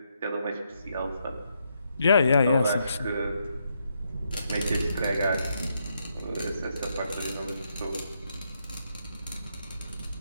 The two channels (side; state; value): both; inverted; correlation -0.78